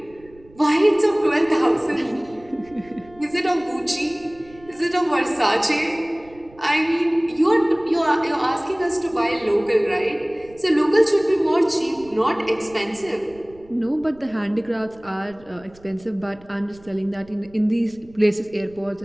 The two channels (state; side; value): noise; right; rumble, 25 dB below the sound